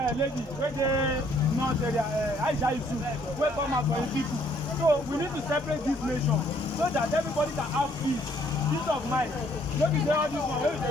wey dey north area, Aisha Yusuf, wey come out for his people. So we need to separate this nation so that everybody can have peace of mind. No be say all this one wey we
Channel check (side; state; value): both; normal; correlation 0.64